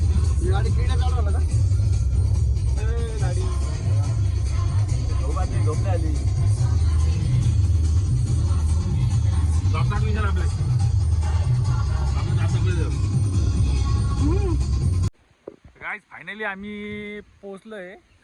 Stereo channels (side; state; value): both; identical; correlation 1.00